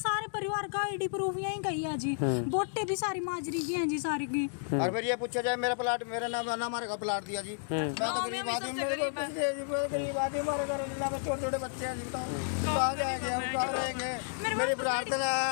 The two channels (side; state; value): right; silent; digital silence